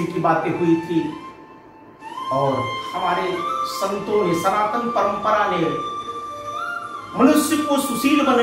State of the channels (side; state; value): both; identical; correlation 1.00